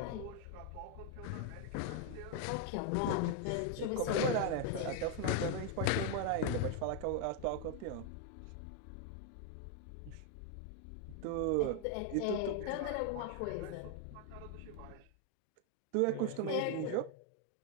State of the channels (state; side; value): different; both; correlation 0.01